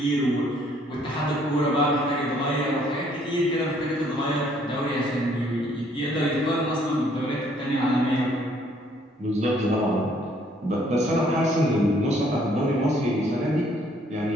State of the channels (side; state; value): both; normal; correlation 0.64